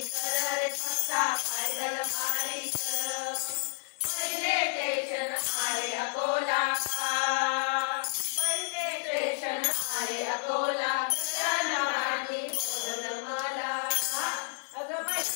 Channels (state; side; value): silent; right; digital silence